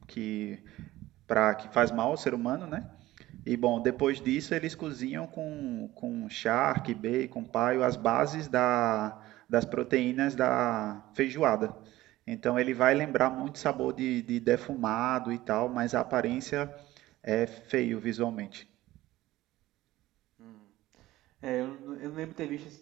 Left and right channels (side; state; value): left; quieter; 16.5 dB